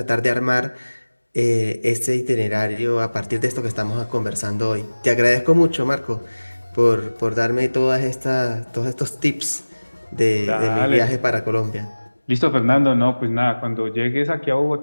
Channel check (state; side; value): inverted; both; correlation -1.00